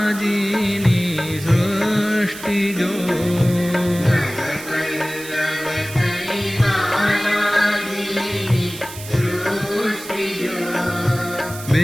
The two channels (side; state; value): right; noise; hiss, 13 dB below the sound